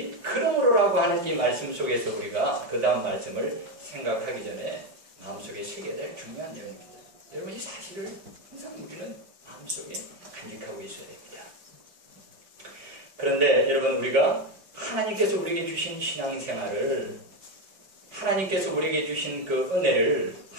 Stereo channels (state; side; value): late; left; 5.3 ms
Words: 그러므로라고 하는 이 말씀 속에서 우리가 그 다음 말씀을 생각하기 전에 마음속에 새겨야 될 중요한 내용입니다. 여러분 이 사실을 항상 우리는 마음속에 간직하고 있어야 됩니다. 그런데 여러분 우리가 하나님께서 우리에게 주신 신앙생활을 하나님께서 우리에게 주신 그 은혜를